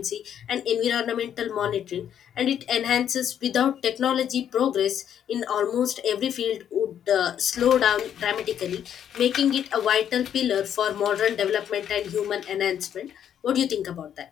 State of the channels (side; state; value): right; quieter; 9.4 dB